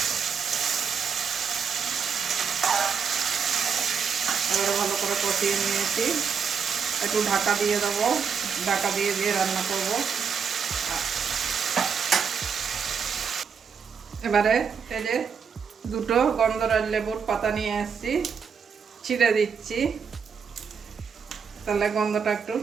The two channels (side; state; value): left; quieter; 6.4 dB